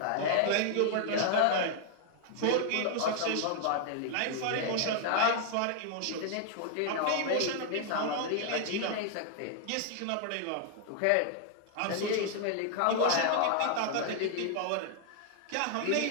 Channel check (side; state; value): both; different; correlation 0.00